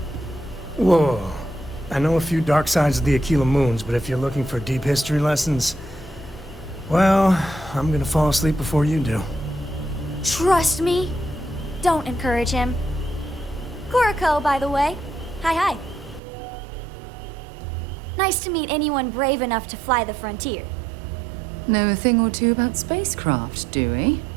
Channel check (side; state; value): left; drops out; at 16.2 s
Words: Whoa. I know a few dark sides of the Akila Moons, but if you're looking for deep history lessons, well, I'm gonna fall asleep before you do. Trust me. Don't encourage him. Coe, by the way. Hi. Nice to meet anyone brave enough to fly the frontier. Know a thing or two about spacecraft, do we?